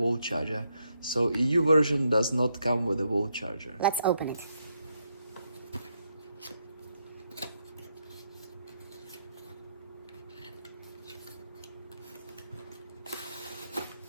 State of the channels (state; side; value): inverted; both; correlation -0.79